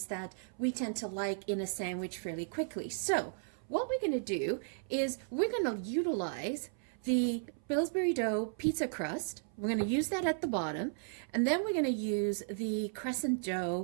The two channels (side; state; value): left; silent; 55 dB below the other